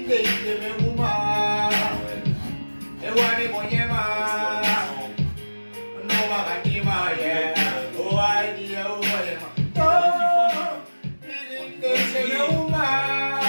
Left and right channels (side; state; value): both; inverted; correlation -1.00